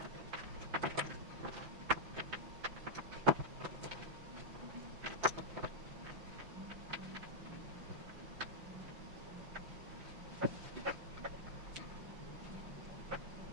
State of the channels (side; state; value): left; late; 5.9 ms